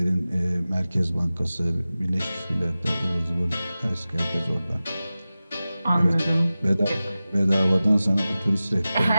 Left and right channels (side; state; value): both; inverted; correlation -0.96